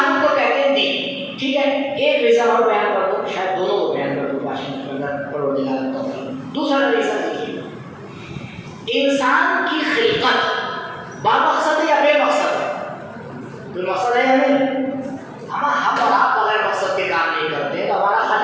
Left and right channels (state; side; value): identical; both; correlation 1.00